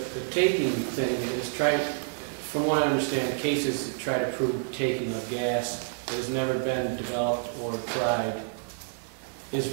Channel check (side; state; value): left; silent; 59 dB below the other